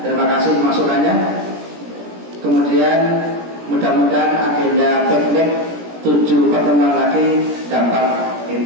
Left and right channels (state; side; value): late; left; 17 ms